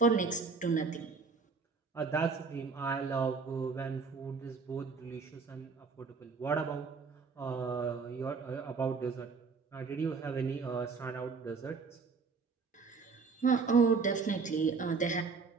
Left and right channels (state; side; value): quieter; left; 4.9 dB